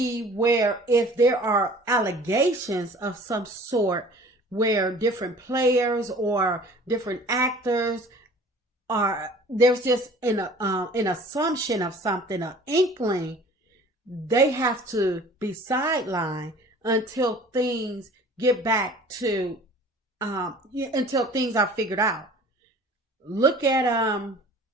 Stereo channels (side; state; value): both; normal; correlation 0.47